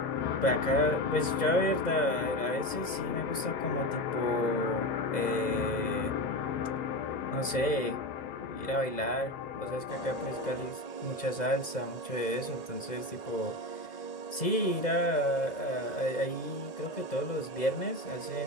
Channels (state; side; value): late; right; 2.0 ms